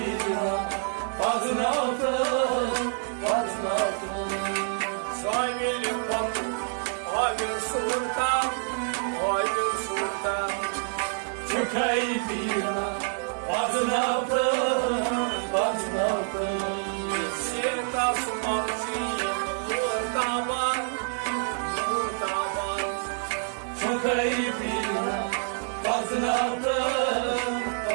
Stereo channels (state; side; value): silent; left; 57 dB below the other